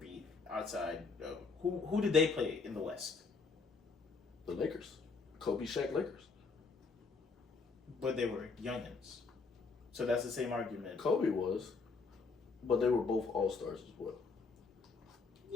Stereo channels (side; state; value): right; quieter; 4.5 dB